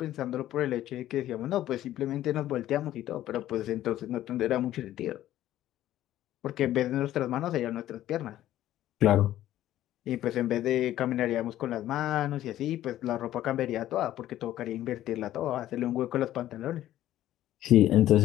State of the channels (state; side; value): quieter; right; 13.3 dB